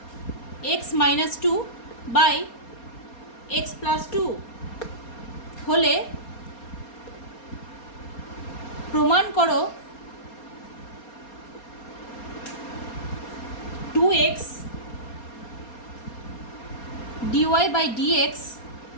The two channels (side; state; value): right; late; 4.3 ms